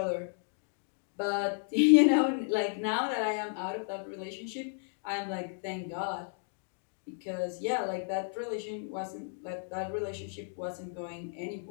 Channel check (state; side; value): silent; right; digital silence